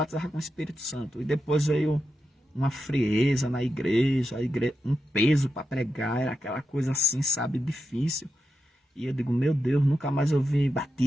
com o Espírito Santo. E depois veio uma frieza na igreja, um peso para pregar, era aquela coisa assim, sabe, difícil. E eu digo, meu Deus, nunca mais eu vi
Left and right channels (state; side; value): normal; both; correlation 0.88